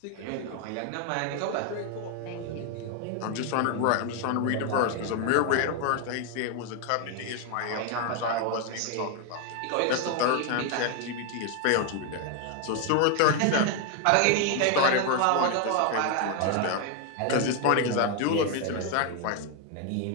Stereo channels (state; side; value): different; both; correlation 0.01